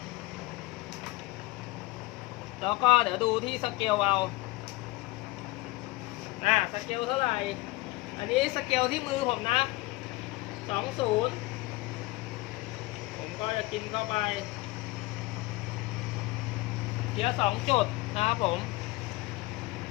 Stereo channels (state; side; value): quieter; right; 20.9 dB